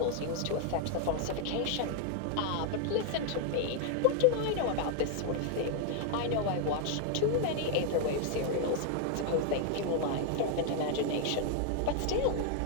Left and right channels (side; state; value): both; different; correlation 0.00